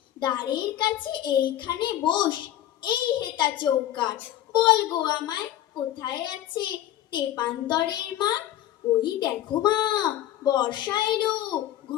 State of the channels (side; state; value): right; quieter; 12.7 dB